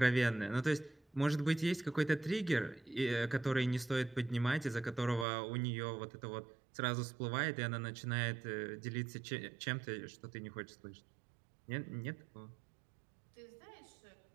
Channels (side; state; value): left; drops out; at 5.2 s